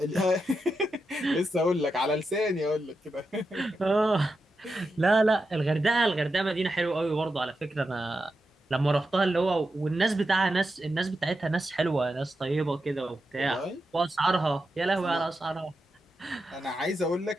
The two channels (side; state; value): both; normal; correlation 0.88